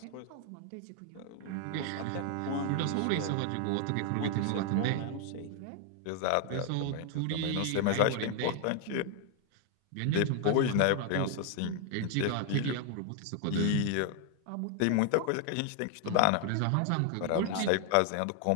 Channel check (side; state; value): both; different; correlation 0.00